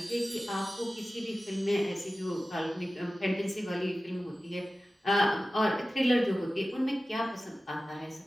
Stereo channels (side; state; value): both; normal; correlation 0.95